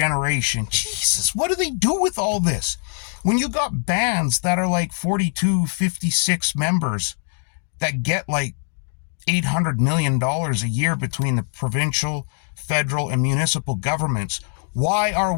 Jesus, what do they do with all this? When you got bands that are like 42, 56 members that get like $800 million a year between the provincial, federal, and municipal governments, why are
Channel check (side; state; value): right; silent; 63 dB below the other